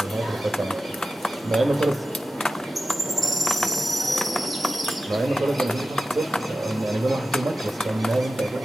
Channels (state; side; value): normal; both; correlation 0.94